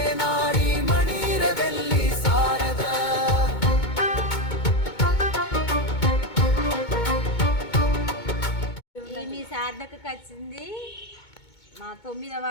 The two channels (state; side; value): late; right; 2.2 ms